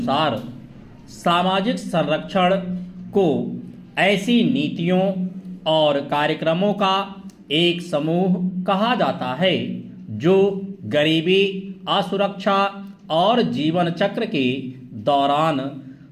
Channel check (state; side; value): identical; both; correlation 1.00